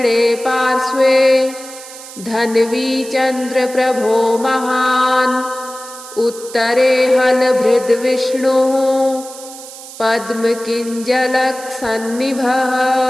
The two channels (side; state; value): right; noise; hiss, 15 dB below the sound